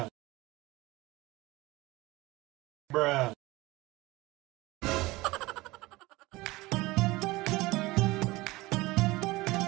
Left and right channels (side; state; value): left; quieter; 20.6 dB